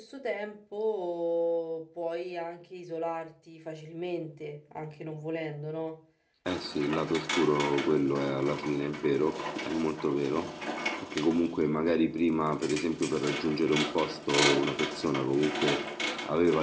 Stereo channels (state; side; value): identical; both; correlation 1.00